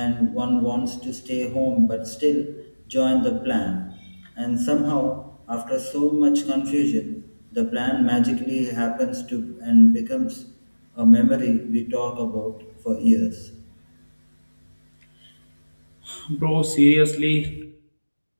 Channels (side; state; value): both; inverted; correlation -1.00